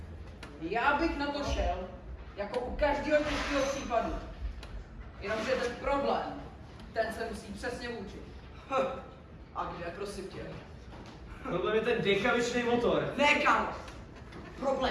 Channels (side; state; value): both; identical; correlation 1.00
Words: já bych na to šel, jako u každého těžkého případu. Jenomže ten problém, ten se musí přesně učit. A kde, prosím tě? Problém je ten dekavičný motor. Ne, kámo.